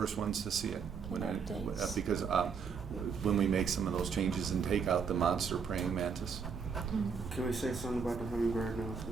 ones to see it Updates. because when we make some of those changes and take out the monster praying mantis. Can we say something about the hummingbird now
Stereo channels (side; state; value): left; quieter; 6.0 dB